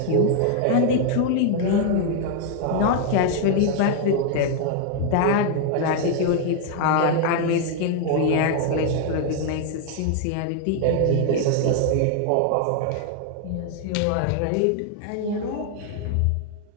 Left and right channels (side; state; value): both; different; correlation 0.00